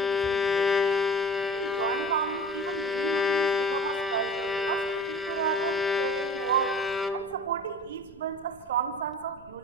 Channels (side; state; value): right; noise; rumble, 25 dB below the sound